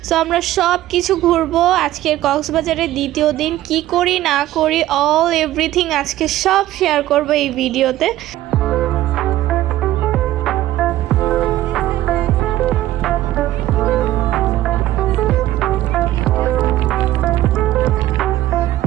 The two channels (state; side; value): quieter; left; 14.6 dB